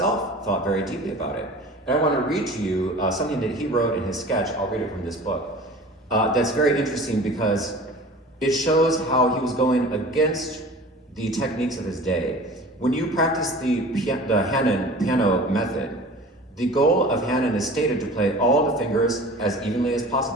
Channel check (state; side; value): normal; both; correlation 0.41